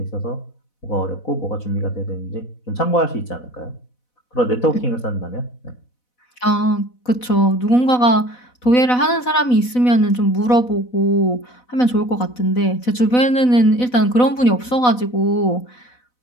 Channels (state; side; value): late; right; 4.0 ms